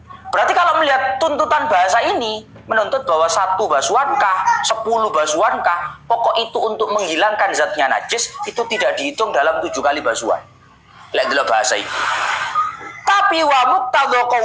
Berarti kalau melihat tuntutan bahasa ini menuntut bahwa 1 basuhankah, 10 basuhankah, pokok itu untuk menghilangkan zatnya najis itu tidak dihitung dalam 7 kali basuhan. Lihat dulu bahasa ini. Tapi wa muqtadha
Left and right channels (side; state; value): both; identical; correlation 1.00